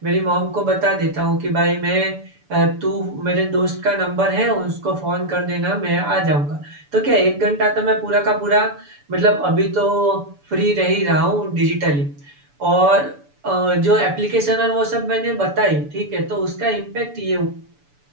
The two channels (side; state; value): left; late; 6.9 ms